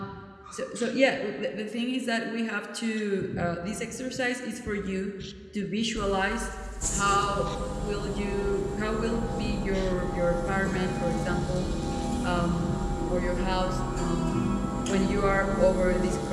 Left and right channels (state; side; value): identical; both; correlation 1.00